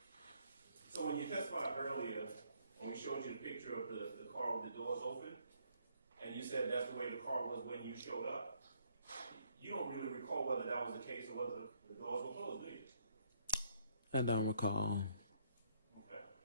when you testified earlier, when we showed you the picture of the car with the doors open, and you said that's the way the car was when you showed up, you don't really recall whether that was the case or whether the doors were closed, do you? I don't recall. Okay.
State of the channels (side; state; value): both; inverted; correlation -0.68